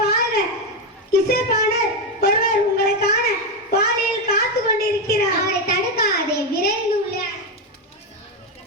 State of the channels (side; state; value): both; normal; correlation 0.08